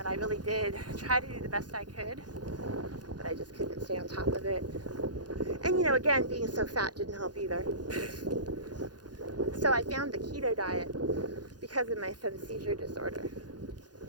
I really did try to do the best I could, but I just couldn't stay on top of it. And again, being so fat didn't help either. So I found the keto diet because of my son's seizure disorder.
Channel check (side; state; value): left; late; 0.69 ms